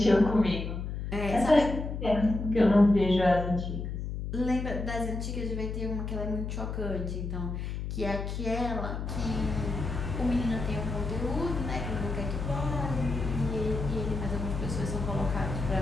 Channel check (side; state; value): left; noise; hum, 4 dB below the sound